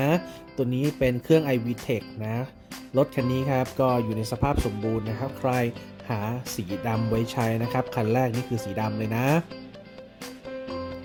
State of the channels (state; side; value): identical; both; correlation 1.00